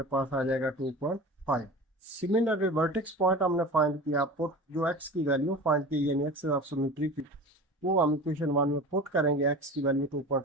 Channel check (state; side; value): normal; both; correlation 0.35